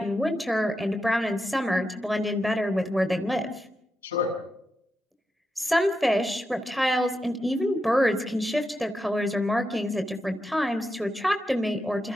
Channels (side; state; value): both; normal; correlation 0.87